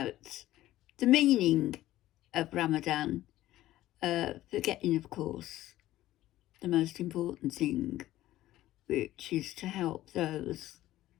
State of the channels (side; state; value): right; quieter; 14.9 dB